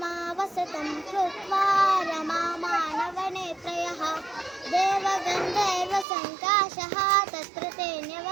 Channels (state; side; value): drops out; left; at 6.1 s